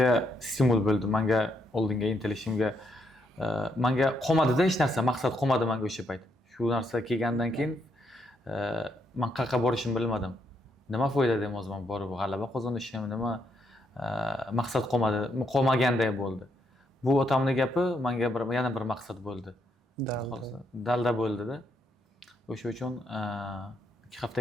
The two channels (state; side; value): normal; both; correlation 0.77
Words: stimul bo'ldi, menga oldinga intilishimga, menga qolmadi-da hech narsa, maqsad qolmadi menga o'sha payt. Shu narsa kelgandan keyin men qayerga borishimni bilmadim. Nima foyda deyman o'zim borib g'alaba qozonishim, nima maqsad qolmaganday bo'ldi. Bu otamning gapi menga yana bir maqsad bo'ldi. Dalda bo'ldi-da. O'sha uchun 2 hafta